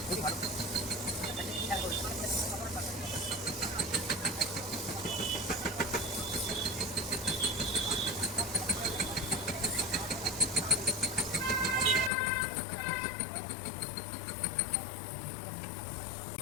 रोटी खा लो।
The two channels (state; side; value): drops out; right; at 12.1 s